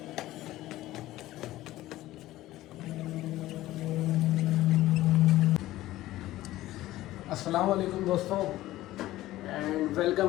अस्सलाम वालेकुम दोस्तों and welcome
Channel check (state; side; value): quieter; right; 15.9 dB